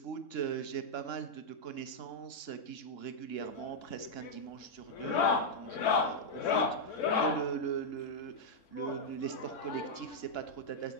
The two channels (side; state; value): right; late; 3.6 ms